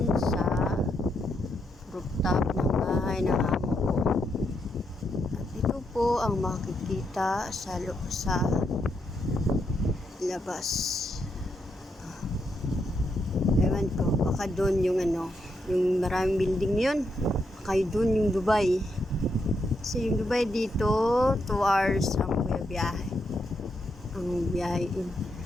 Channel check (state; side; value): normal; both; correlation 0.80